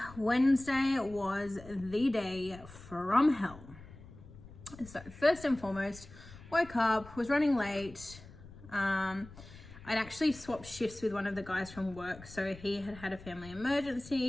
Wednesday was the day from hell. So first and foremost, woke up, was running late. I'd actually swapped shifts with one of the guys from work. So he had a family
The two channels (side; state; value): left; noise; rumble, 18 dB below the sound